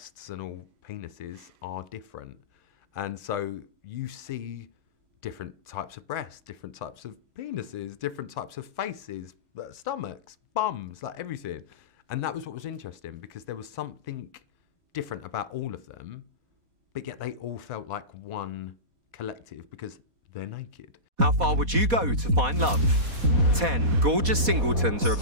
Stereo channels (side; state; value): left; late; 4.1 ms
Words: and all penises are different. And so you see different types of breasts, different types of penises, different types of faces, stomachs, bums, like everything. And that was what was interesting, because there was something different about all of them, but yet they all felt like one collective because they're naked. How far would you go to find love? 10 gorgeous singletons are